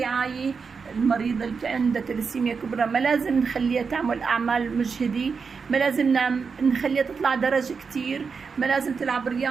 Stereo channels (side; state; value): left; quieter; 5.4 dB